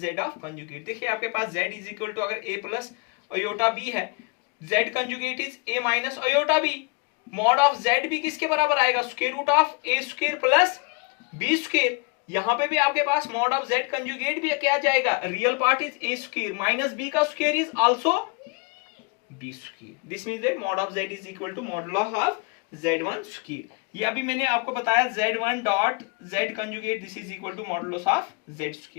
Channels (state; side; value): quieter; right; 31.8 dB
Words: of conjugate. देखिए आपके पास z is equal to अगर a plus iota b है, z conjugate is a minus iota b, mod of z भी किसके बराबर आएगा, square root of a square plus b square. यहां पे भी आपके पास मॉड ऑफ z कंजुगेट भी क्या जाएगा, real part is a square minus b का square is also b square. This means that mod of z is equal to modulus of z1 square. ये अभी मैंने आपको बताया z1 dot z conjugate this is equal to modulus of z